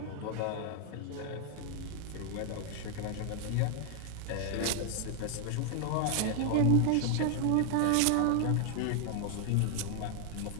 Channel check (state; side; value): different; both; correlation 0.00